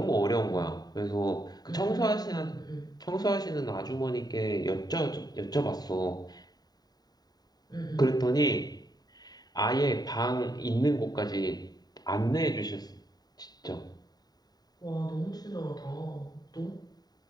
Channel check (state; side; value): late; right; 0.19 ms